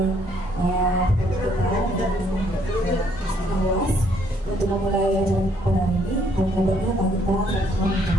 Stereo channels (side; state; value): both; normal; correlation 0.68